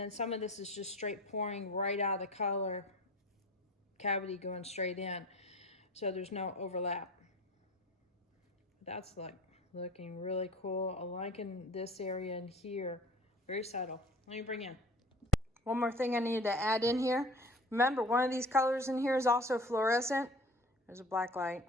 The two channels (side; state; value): both; normal; correlation 0.42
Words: some of this is just straight pouring right out of the color cavity going straight in. So there's no overlap. That's like looking really cool. I'm liking this area in here. Very subtle. Let me bring in. One more thing I need to add in here. Remember, one of these colors in here is also fluorescent. There's a black light.